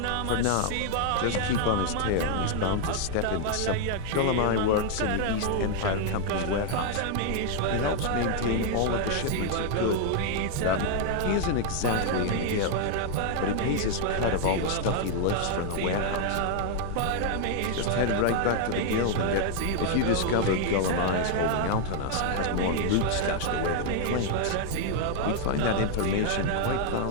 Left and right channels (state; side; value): different; both; correlation 0.00